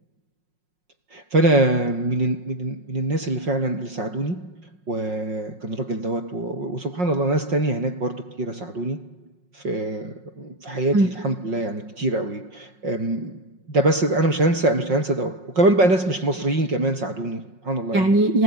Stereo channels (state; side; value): late; left; 5.5 ms